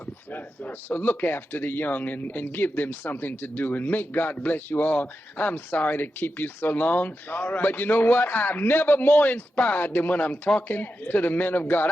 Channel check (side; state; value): both; normal; correlation 0.89